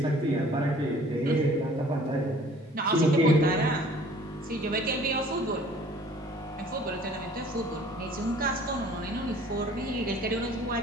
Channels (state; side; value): normal; both; correlation 0.52